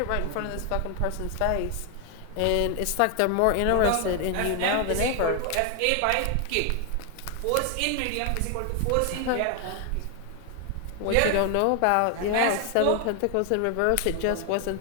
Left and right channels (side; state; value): both; different; correlation 0.01